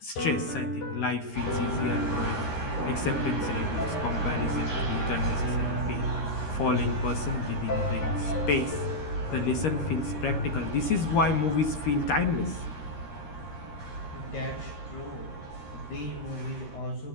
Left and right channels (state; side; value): late; right; 13 ms